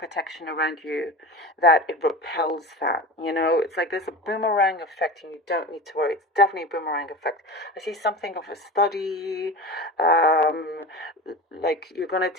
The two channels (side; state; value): both; normal; correlation 0.30